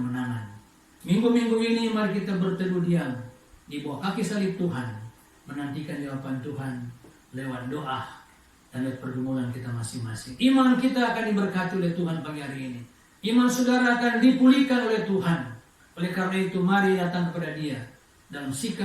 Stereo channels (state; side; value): identical; both; correlation 1.00